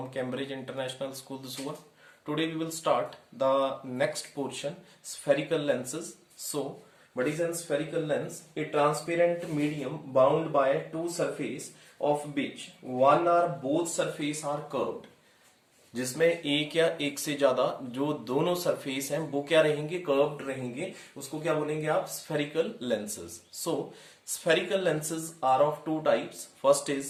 Cambridge International School, Dusua. Today we will start the next portion, spherical lenses. So, what is a spherical lens? A transparent medium bound by two surfaces of which one or both surface are curved. जिसमें एक या एक से ज्यादा जो दोनों surface हैं वो क्या रहेंगे, कर्व्ड रहेंगे, उसको क्या बोलेंगे आप, spherical lenses. So spherical lenses are of two types. First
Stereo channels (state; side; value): identical; both; correlation 1.00